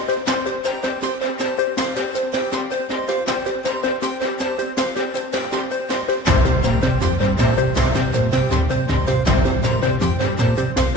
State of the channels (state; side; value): normal; both; correlation 0.47